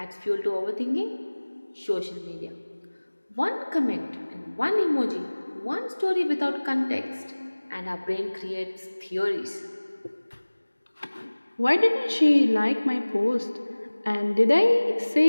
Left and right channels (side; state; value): both; inverted; correlation -1.00